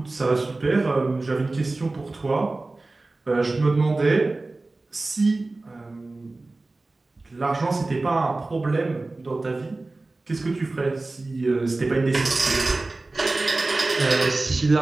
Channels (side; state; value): left; quieter; 3.2 dB